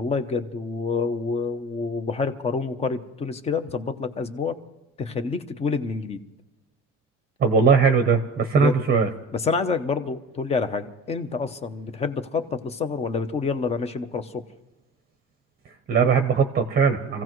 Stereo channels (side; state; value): both; normal; correlation 0.37